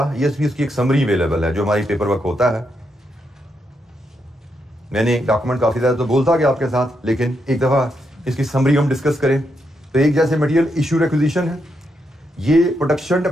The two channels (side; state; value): both; normal; correlation 0.81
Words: ये भी इसकी एक समरी अवेलेबल है जो हमारी पेपर वर्क होता है। मैंने डॉक्यूमेंट काफी ज्यादा तो बोलता गया आपके साथ, लेकिन एक दफा इसकी समरी हम डिस्कस करें तो एक जैसे मटेरियल इशू रिक्विजिशन है, ये प्रोडक्शन